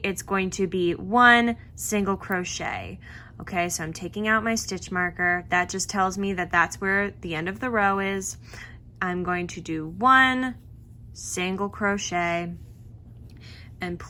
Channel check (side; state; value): both; identical; correlation 1.00